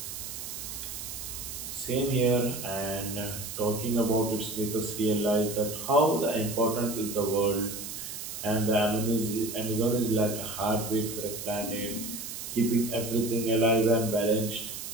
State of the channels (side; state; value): right; noise; hiss, 8 dB below the sound